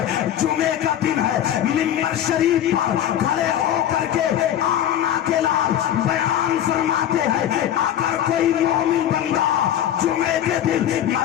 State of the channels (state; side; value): quieter; right; 10.9 dB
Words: जुमे का दिन है, मिंबर शरीफ पर खड़े होकर के आना के लाल बयान फरमाते हैं, अगर कोई मोमिन बंदा जुमे के दिन